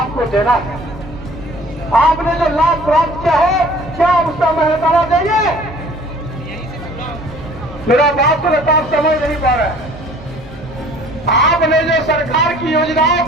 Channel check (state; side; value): normal; both; correlation 0.51